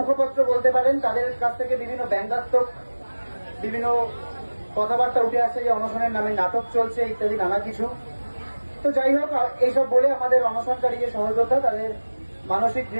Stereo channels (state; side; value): inverted; both; correlation -1.00